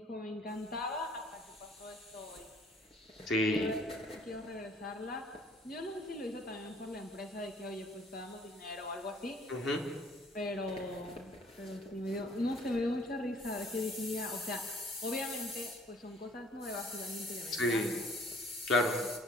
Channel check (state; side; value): normal; both; correlation 0.57